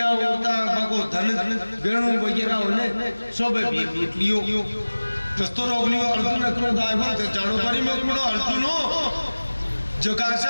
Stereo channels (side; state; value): both; inverted; correlation -1.00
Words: होता बाको धन वेणु वगैरह होने सोबे भी लूट लियो। दोस्तों रोक लियो अर्जुन क्रोध आयो तो जानो परी में कुड़ो अर्जुनो जकार से